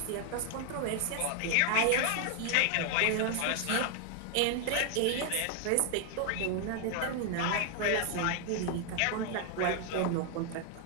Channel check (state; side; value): different; both; correlation 0.00